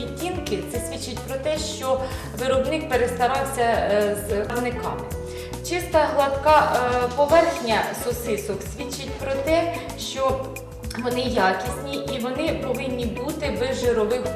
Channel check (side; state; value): both; identical; correlation 1.00